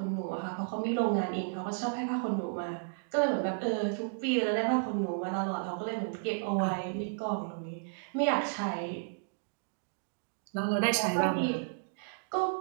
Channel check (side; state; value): left; silent; digital silence